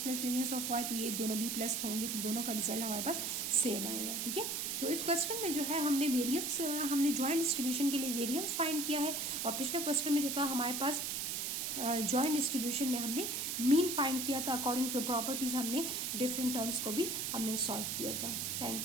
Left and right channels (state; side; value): noise; right; hiss, 1 dB below the sound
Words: variance of y, तो ये दोनों भी प्लस होंगे, तो दोनों का रिजल्ट हमारे पास सेम आएगा, ठीक है। तो इस क्वेश्चन में जो है हमने वेरियंस, हमने जॉइंट डिस्ट्रीब्यूशन के लिए वेरियंस फाइंड किया है, और पिछले क्वेश्चन में जो था हमारे पास जॉइंट डिस्ट्रीब्यूशन में हमने मीन फाइंड किया था, अकॉर्डिंग टू प्रॉपर्टीज हमने डिफरेंट टर्म्स को भी हमने सॉल्व किया था।